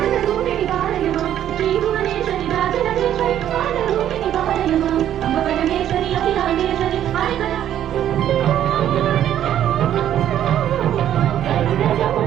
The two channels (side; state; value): left; quieter; 11.0 dB